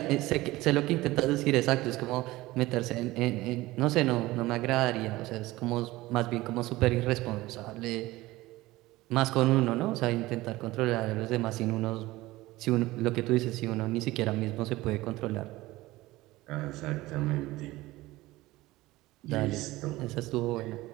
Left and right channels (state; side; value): quieter; left; 18.7 dB